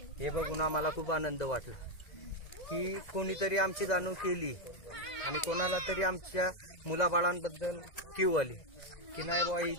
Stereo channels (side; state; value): right; late; 2.0 ms